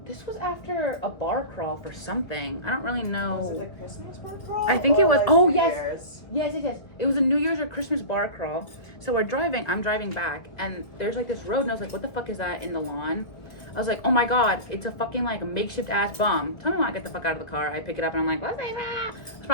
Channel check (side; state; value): right; late; 1.9 ms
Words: a bar crawl for something. I don't really know. Was it a Christmas bar crawl? I think it was. Like Oh New yes. Year's? Yes. It was a New Year's or Christmas bar crawl. So I'm driving back, and there's like this road, and I was like, what the fuck is that in the lawn? I was like, oh my god, it's a fucking like a makeshift ass bomb. Tell me when I get the fuck out of the car. I pick it up and I'm like, what's that? It's